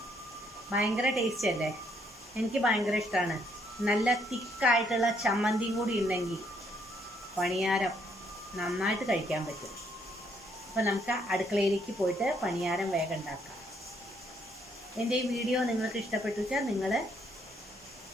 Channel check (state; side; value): normal; both; correlation 0.70